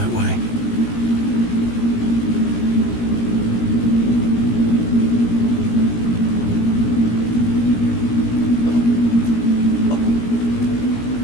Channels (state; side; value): late; right; 17 ms